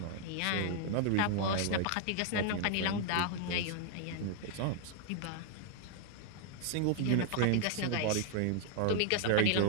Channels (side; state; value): both; different; correlation 0.00